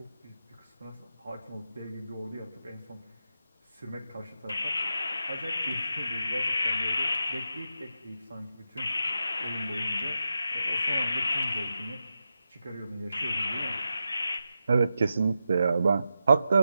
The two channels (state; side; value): inverted; both; correlation -0.89